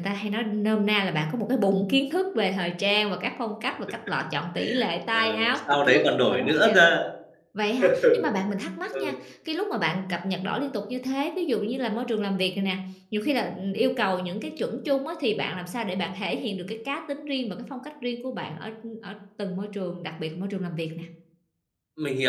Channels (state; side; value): identical; both; correlation 1.00